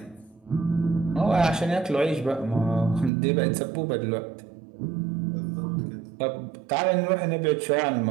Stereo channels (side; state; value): left; drops out; at 3.1 s